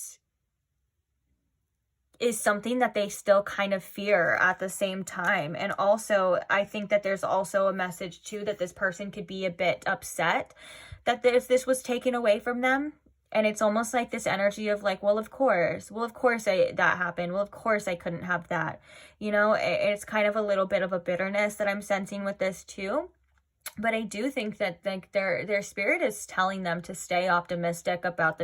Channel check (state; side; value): identical; both; correlation 1.00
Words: is something that they still kind of fear at the same time. And also, I think that there's also a message too that this person could be a bit upset that this was taken away from them. And it's almost like this energy of like, well, of course that happened. Well, of course I couldn't have that. You know, it's kind of a little bit of a bitterness that I'm sensing with this too. But I do think that like their spirit is telling them to stay optimistic about the